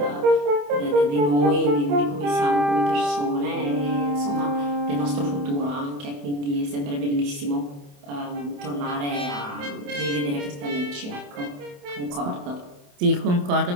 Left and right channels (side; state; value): left; late; 28 ms